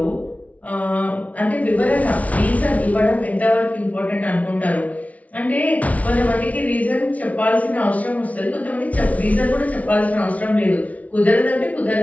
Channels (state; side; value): late; right; 0.068 ms